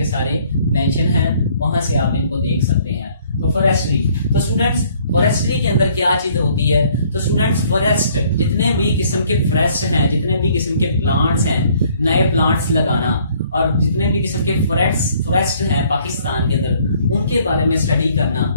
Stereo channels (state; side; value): inverted; both; correlation -0.61